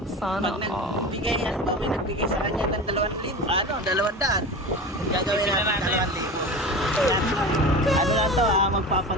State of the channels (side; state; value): both; normal; correlation 0.30